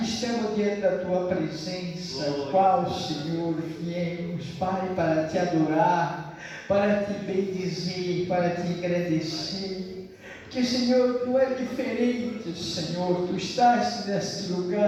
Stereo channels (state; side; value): identical; both; correlation 1.00